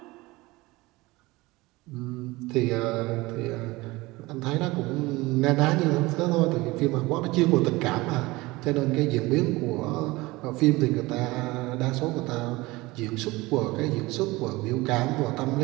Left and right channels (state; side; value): quieter; left; 21.2 dB